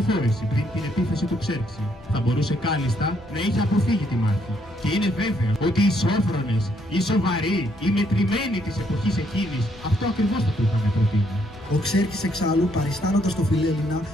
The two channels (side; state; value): both; normal; correlation 0.71